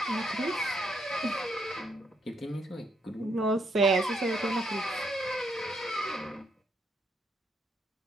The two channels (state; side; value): normal; both; correlation 0.75